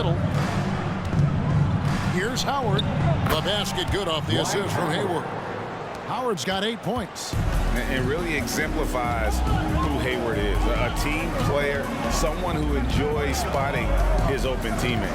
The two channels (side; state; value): both; identical; correlation 1.00